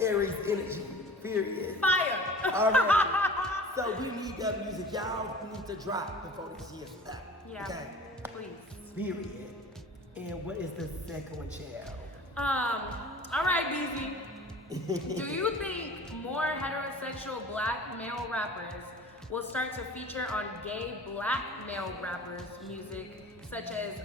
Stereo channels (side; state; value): both; normal; correlation 0.42